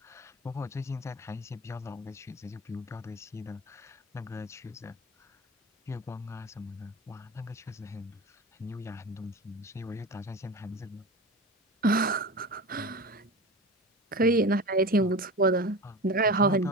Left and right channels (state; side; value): normal; both; correlation 0.30